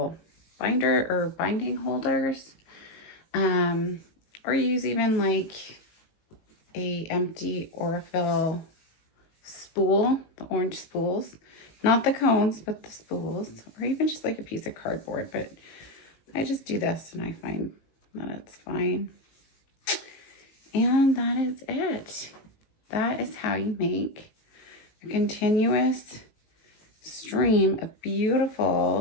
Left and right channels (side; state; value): right; late; 19 ms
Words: binder or binding holders, or use even like a empty Aurifil spool, the orange spools, not the cones, but the spools, or even just like a piece of cardboard. But I just do this and I find that it's fine. And that is it. That is how you make a continuous stream of